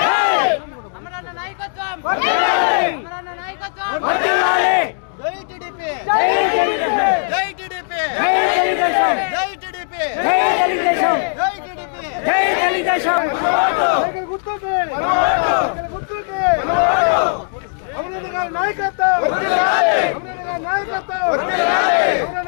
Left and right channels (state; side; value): silent; right; digital silence